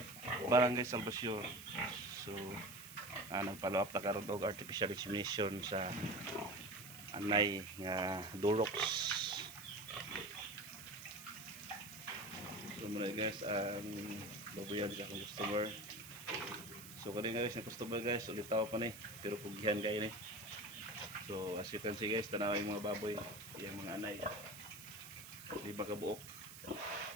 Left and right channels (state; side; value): noise; right; hiss, 14 dB below the sound